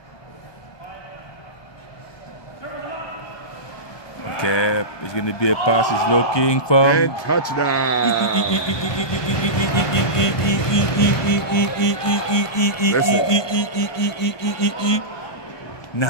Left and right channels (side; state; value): right; late; 1.2 ms